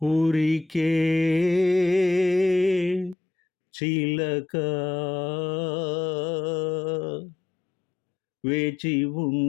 ఊరికే చిలక వేచి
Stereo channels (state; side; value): drops out; right; at 3.2 s